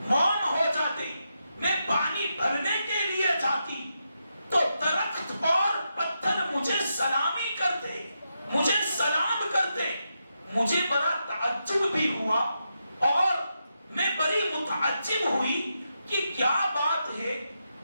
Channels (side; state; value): both; inverted; correlation -0.85